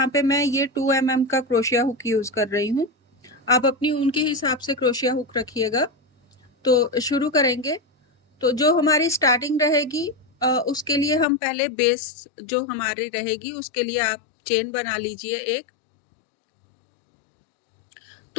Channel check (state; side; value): drops out; right; at 11.2 s